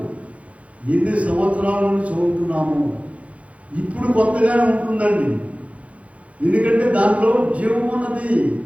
ఎన్ని సంవత్సరాల నుంచి చదువుతున్నాము. ఇప్పుడు కొత్తగానే ఉంటుందండి, ఎందుకంటే దాంట్లో జీవం ఉన్నది,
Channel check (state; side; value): late; left; 0.065 ms